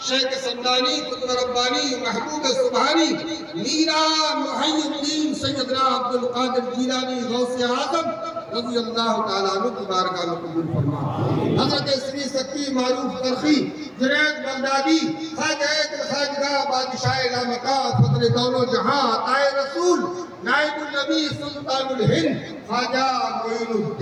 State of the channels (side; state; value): both; identical; correlation 1.00